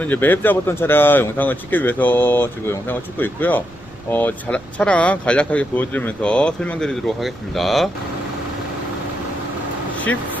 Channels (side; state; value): right; noise; rumble, 23 dB below the sound